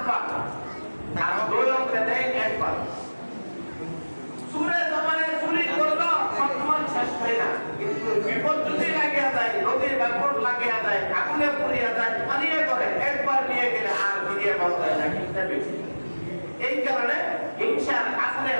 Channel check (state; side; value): inverted; both; correlation -1.00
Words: বার আর দৈরে নেই 1 বার। চুরে সামারে চুরি করলো সম্মান শেষ হয় না, কিন্তু বিপদ যদি লাগিয়া যায়, নদীর ব্যাপক লাগিয়া যায়, আগুনে পুড়িয়া যায়, পানিয়ে করে একবার নিয়ে গেলে আর ফিরিয়ে পাওয়া যায় না। কিন্তু বেশি এই কারণে হিংসার আসলে